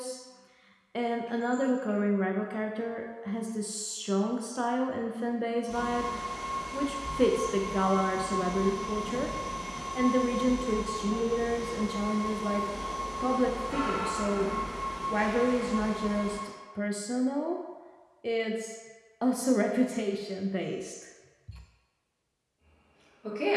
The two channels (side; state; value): both; identical; correlation 1.00